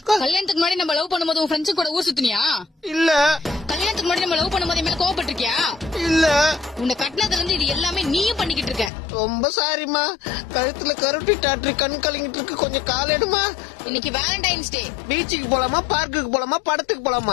கல்யாணத்துக்கு முன்னாடி நம்ம லவ் பண்ணும்போது உன் ஃப்ரெண்ட்ஸ் கூட ஊர் சுத்தினியா? இல்ல. கல்யாணத்துக்கு முன்னாடி நம்ம லவ் பண்ணும்போது மேல கோவப்பட்டிருக்கியா? இல்ல. உன்னை கட்டினதுல இருந்து இது எல்லாமே நீயும் பண்ணிக்கிட்டு இருக்க. ரொம்ப சாரிமா. கழுத்துல கருட்டி டாக்டர் கண் கலங்கிட்டு இருக்கு. கொஞ்சம் கால் எடுமா. இன்னைக்கு வேலண்டைன்ஸ் டே. பீச்சுக்கு போலாமா, பார்க்குக்கு போலாமா, படத்துக்கு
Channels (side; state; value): right; drops out; at 8.9 s